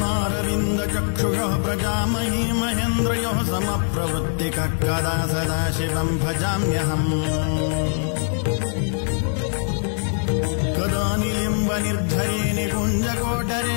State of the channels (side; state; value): right; silent; 64 dB below the other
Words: प्रजामही महेन्द्रयोः समप्रवृत्तिकः कदा सदा शिवम् भजाम्यहम् कदा निलिम्बनिर्झरे